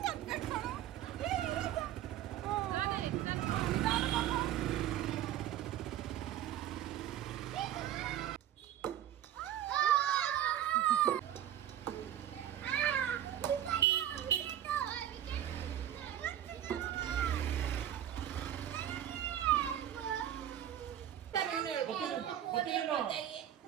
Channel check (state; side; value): quieter; left; 11.3 dB